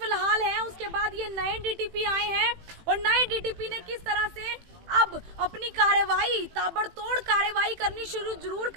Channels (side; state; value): left; late; 18 ms